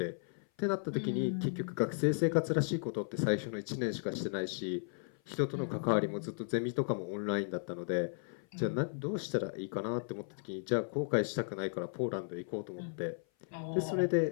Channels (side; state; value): right; silent; 54 dB below the other